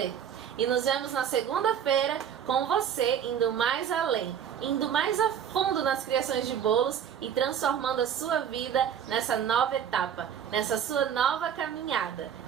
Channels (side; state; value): left; quieter; 8.7 dB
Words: E nos vemos na segunda-feira com você indo mais além, indo mais a fundo nas criações de bolos e transformando a sua vida nessa nova etapa, nessa sua nova caminhada.